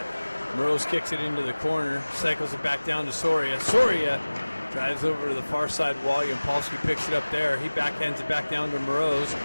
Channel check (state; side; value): inverted; both; correlation -1.00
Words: Moroz kicks it into the corner, cycles it back down to Soria. Soria drives over to the far side wall. Yampolsky picks it up there. He backhands it back down to Moroz.